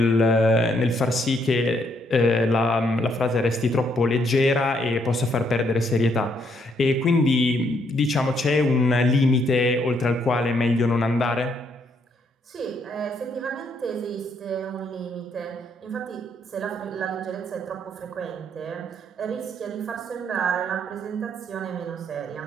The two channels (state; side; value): normal; both; correlation 0.72